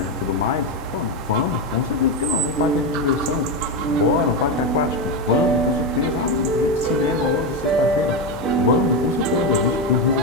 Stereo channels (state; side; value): normal; both; correlation 0.11